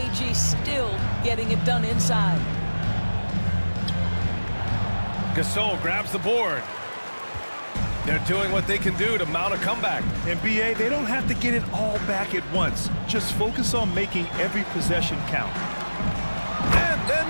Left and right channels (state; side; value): inverted; both; correlation -1.00